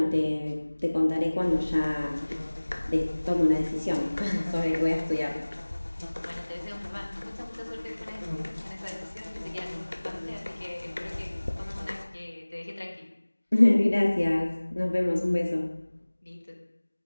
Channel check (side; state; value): both; inverted; correlation -1.00